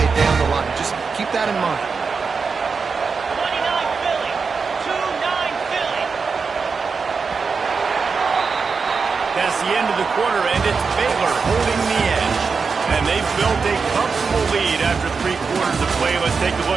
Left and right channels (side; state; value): left; quieter; 5.1 dB